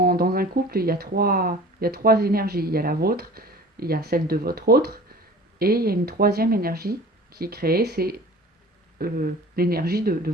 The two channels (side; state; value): both; normal; correlation 0.43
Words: un couple, il y a trois énergies. Il y a la vôtre, il y a celle de votre autre, et il y a une troisième énergie qui est créée, c'est l'énergie de